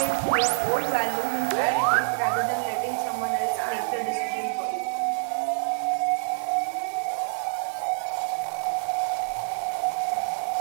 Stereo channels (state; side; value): silent; left; 61 dB below the other